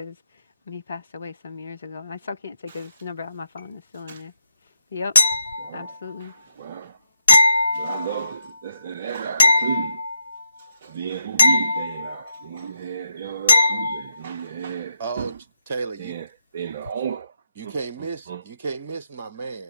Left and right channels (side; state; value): both; inverted; correlation -0.82